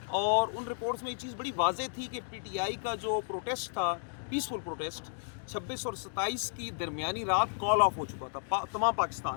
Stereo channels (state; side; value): silent; right; digital silence